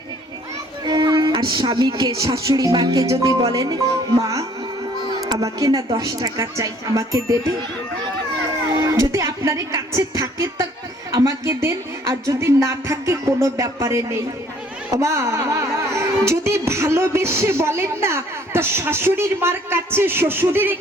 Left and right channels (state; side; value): normal; both; correlation 0.59